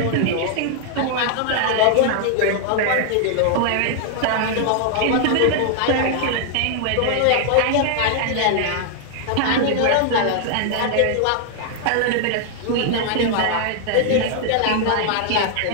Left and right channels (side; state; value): both; different; correlation 0.00